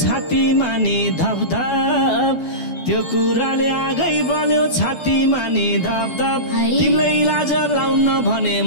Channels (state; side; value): late; right; 12 ms